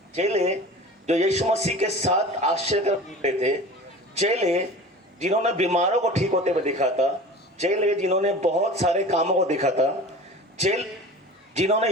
चेले जो यीशु मसीह के साथ आश्चर्य कर थे, चेले जिन्होंने बीमारों को ठीक होते हुए देखा था, चेले जिन्होंने बहुत सारे कामों को देखा था, चेले जिन्होंने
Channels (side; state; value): both; normal; correlation 0.38